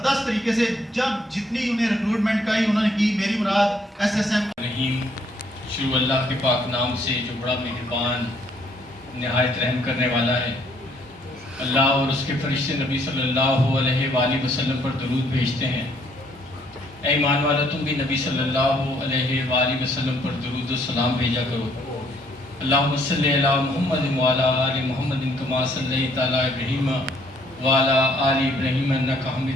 طریقے سے جب جتنی انہیں ریکروٹمنٹ کا ہی انہوں نے کی. میری مراد ایس ایس ایم رحیم. شروع اللہ کے پاک نام سے جو بڑا مہربان نہایت رحم کرنے والا ہے. اللہ اور اس کے فرشتے نبی صلی اللہ علیہ وآلہ وسلم پر درود بھیجتے ہیں. اے ایمان والا تم بھی نبی صلی اللہ علیہ وآلہ وسلم پر درود و سلام بھیجا کرو. اللہم صلی علی محمد وعلی آل محمد کما صلیت علی ابراہیم وعلی آل ابراہیم انک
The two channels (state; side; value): normal; both; correlation 0.66